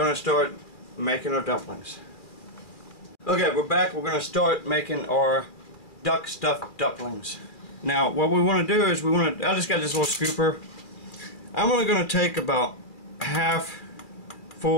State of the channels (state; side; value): late; right; 2.4 ms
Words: to start making our dumplings. Okay, we're back. We're going to start making our duck stuffed dumplings. Now, what we want to do is I just got this little scooper. I'm only going to take about half